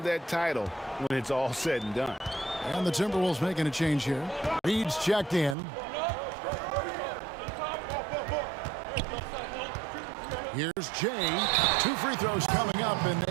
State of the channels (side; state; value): left; drops out; at 5.6 s